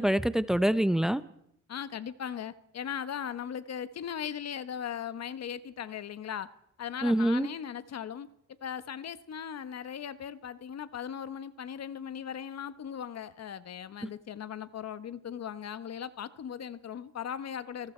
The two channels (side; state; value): both; normal; correlation 0.68